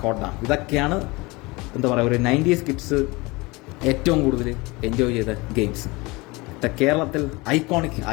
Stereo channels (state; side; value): quieter; right; 24.1 dB